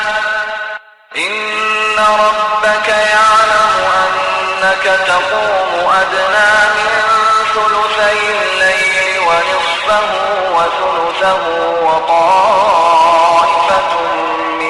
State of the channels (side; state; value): both; identical; correlation 1.00